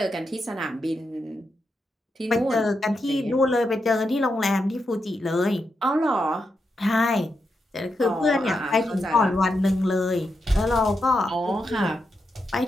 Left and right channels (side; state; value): both; normal; correlation 0.85